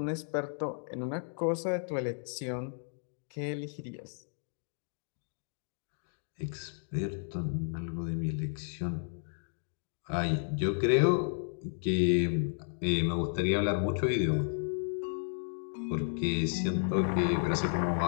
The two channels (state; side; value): silent; right; digital silence